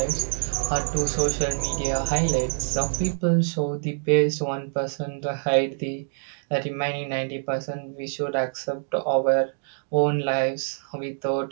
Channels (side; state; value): left; silent; digital silence